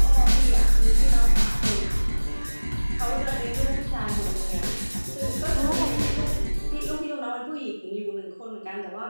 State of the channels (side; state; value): both; inverted; correlation -1.00